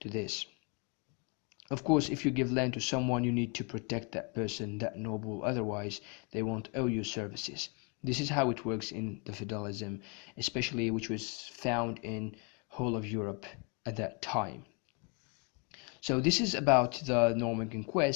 this. Of course, if you give land to someone, you need to protect that person, that noble, otherwise they won't owe you services. This is how it works in the feudalism, especially which was found in whole of Europe at that time. So this is about the Norman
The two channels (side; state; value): right; quieter; 34.2 dB